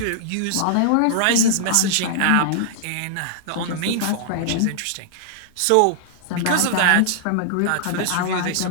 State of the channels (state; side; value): different; both; correlation -0.01